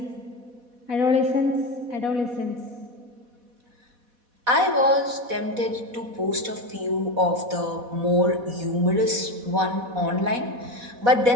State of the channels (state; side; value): late; left; 4.1 ms